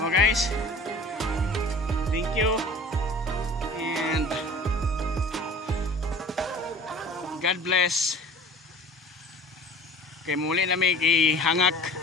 Oh guys. Thank you. And God bless. Kay muli namin ihangak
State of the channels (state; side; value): normal; both; correlation 0.43